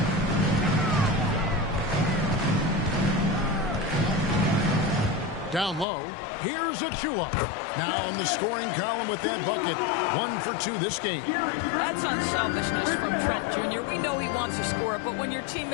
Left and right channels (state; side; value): drops out; right; at 5.9 s